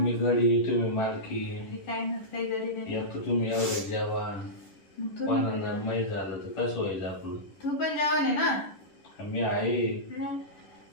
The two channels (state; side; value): late; right; 10 ms